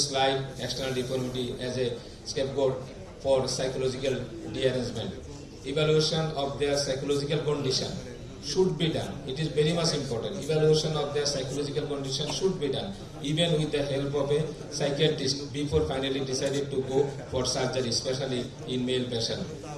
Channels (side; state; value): both; identical; correlation 1.00